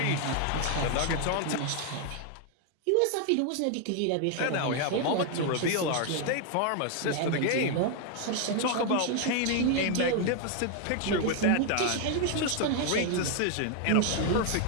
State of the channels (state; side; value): different; both; correlation 0.00